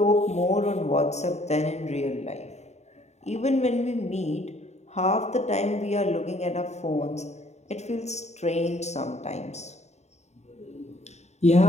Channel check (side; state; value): right; late; 0.32 ms